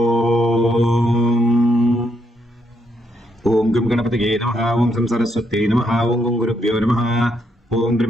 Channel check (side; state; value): both; normal; correlation 0.77